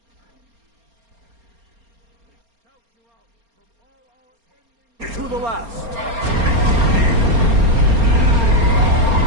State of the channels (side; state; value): left; late; 4.3 ms